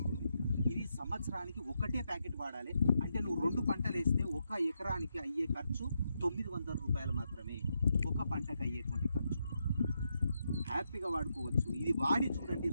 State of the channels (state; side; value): inverted; both; correlation -0.82